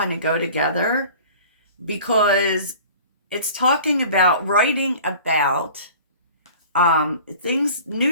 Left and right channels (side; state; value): both; inverted; correlation -0.43